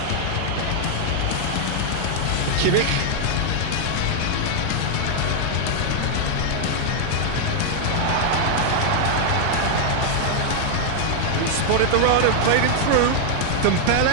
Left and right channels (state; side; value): different; both; correlation 0.00